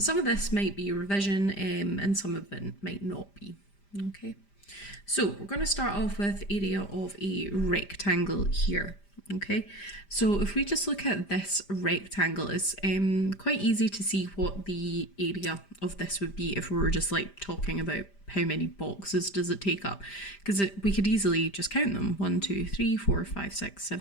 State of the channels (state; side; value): late; right; 5.0 ms